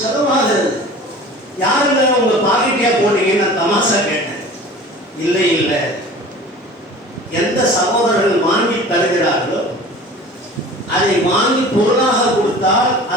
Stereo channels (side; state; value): both; normal; correlation 0.41